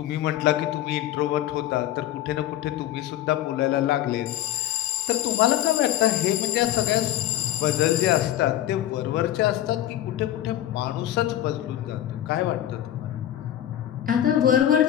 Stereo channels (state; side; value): quieter; right; 12.6 dB